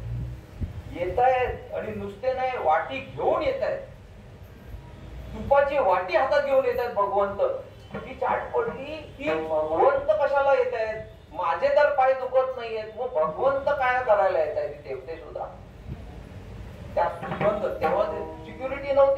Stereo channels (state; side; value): identical; both; correlation 1.00